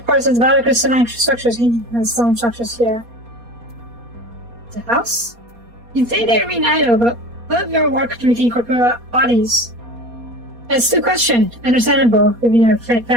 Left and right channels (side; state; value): left; late; 4.2 ms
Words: course, it's valid crystalline structures and stone structures here. The house? You say they remain idle, but what of your work to regain corporeal bodies? It's the question, understandable, given your